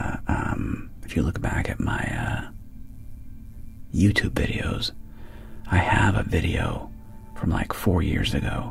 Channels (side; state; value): both; identical; correlation 1.00